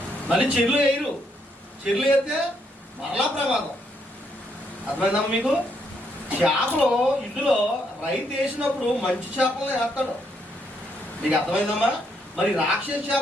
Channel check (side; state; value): both; normal; correlation 0.74